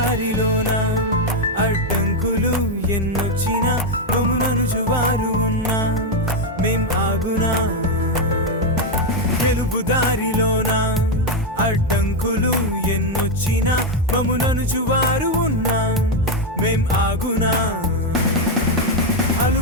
అడ్డంకులు ఎన్నొచ్చినా మమ్ములను జువారు ఉన్నా మేం ఆగునా గెలుపు దారిలోన అడ్డంకులు ఎన్నొచ్చినా మమ్ములను జువారు ఉన్నా మేం ఆగునా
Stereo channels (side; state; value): both; normal; correlation 0.03